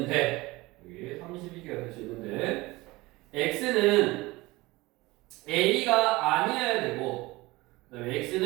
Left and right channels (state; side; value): quieter; left; 21.1 dB